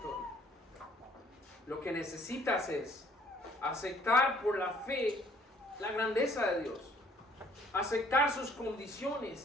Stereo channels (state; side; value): normal; both; correlation 0.60